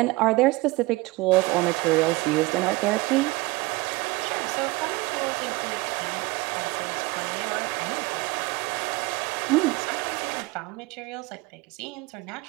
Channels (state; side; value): quieter; left; 22.2 dB